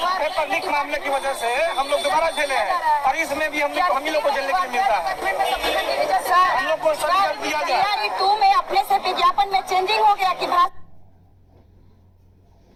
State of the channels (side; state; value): both; identical; correlation 1.00